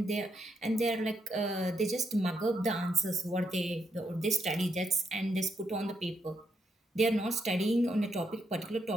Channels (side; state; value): both; normal; correlation 0.79